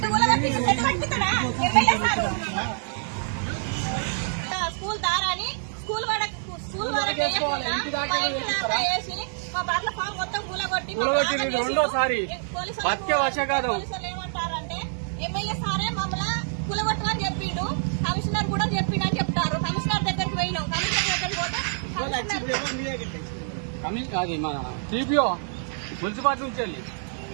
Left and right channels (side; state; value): left; silent; digital silence